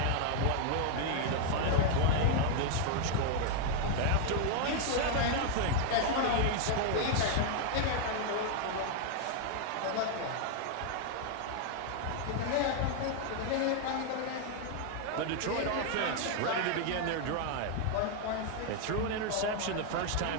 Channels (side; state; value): both; different; correlation 0.00